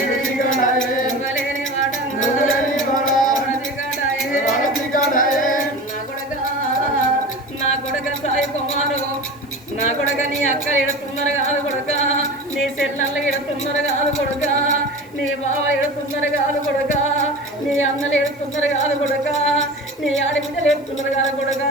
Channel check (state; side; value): noise; left; hiss, 29 dB below the sound